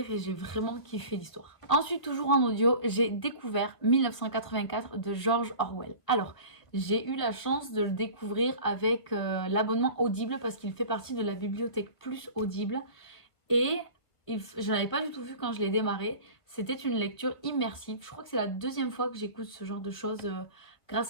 et j'ai vraiment kiffé l'histoire. Ensuite, toujours en audio, j'ai découvert 1984 de George Orwell. Alors, j'ai eu la chance de le découvrir avec l'abonnement Audible parce qu'il fait partie de la bibliothèque plus Audible, et je n'avais pas du tout vu quand je l'ai démarré. C'était une lecture immersive. Je crois que c'est la deuxième fois que j'écoute ce genre de choses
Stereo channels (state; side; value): late; right; 1.4 ms